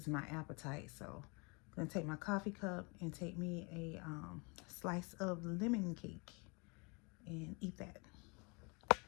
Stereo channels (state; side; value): quieter; right; 30.5 dB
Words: my appetite, so I'm gonna take my coffee cup and take me a slice of lemon cake and eat that.